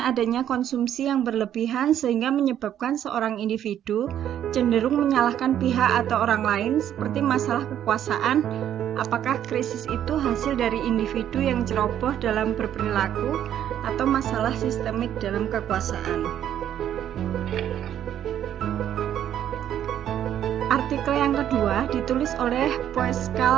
adanya konsumsi yang berlebihan sehingga menyebabkan seorang individu cenderung menyalahkan pihak atau orang lain seperti masalah kekuasaan. Apakah krisis itu hasil dari individu yang ceroboh dalam berperilaku atau masalah sistemik dalam kekuasaan? Artikel yang kedua ditulis oleh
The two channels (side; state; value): left; quieter; 10.5 dB